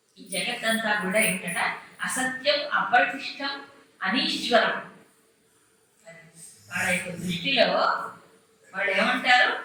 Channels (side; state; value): both; identical; correlation 1.00